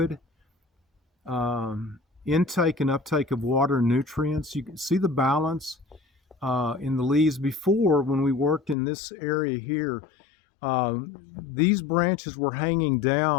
intake and uptake of water and nutrients. You can see the balance in the leaves. Before, when we worked in this area here, these branches were hanging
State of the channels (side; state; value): right; drops out; at 8.8 s